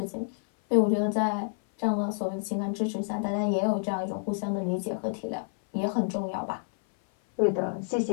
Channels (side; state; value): right; silent; 56 dB below the other